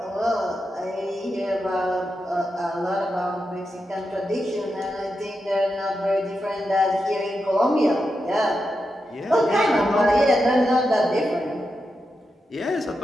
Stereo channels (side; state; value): both; normal; correlation 0.87